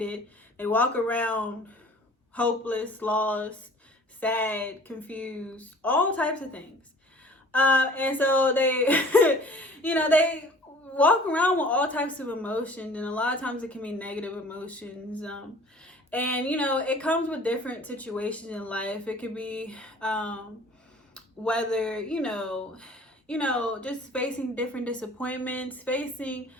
They walk around hopeless, lost, sad, confused, all types of things. And so they, they walk around with all types of emotions, and a lot of times it can be negative emotions. And it comes with different situations in life. It could be whether just facing different disappointments, facing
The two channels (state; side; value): normal; both; correlation 0.49